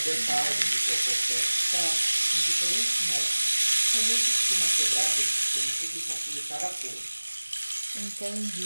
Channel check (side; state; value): both; inverted; correlation -1.00